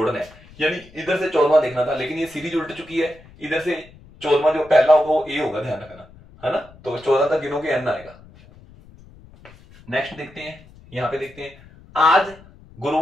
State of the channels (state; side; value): noise; left; rumble, 23 dB below the sound